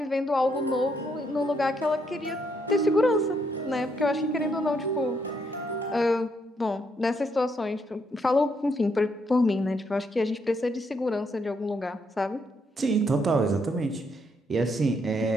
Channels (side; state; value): both; normal; correlation 0.74